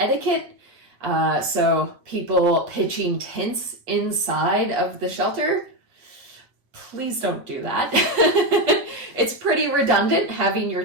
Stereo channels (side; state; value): left; late; 8.3 ms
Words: So people pitching tents inside of the shelter, please don't do that. It's pretty redundant having your